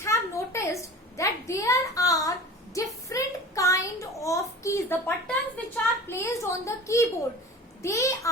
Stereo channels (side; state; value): both; normal; correlation 0.38